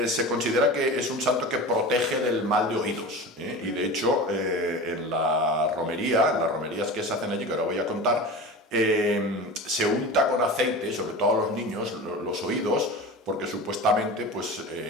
se considera que es un santo que protege del mal de oídos, y de hecho en las romerías que se hacen allí, que ahora voy a contar, se unta con aceite, sobre todo a los niños, los oídos, porque supuestamente pues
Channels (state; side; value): normal; both; correlation 0.31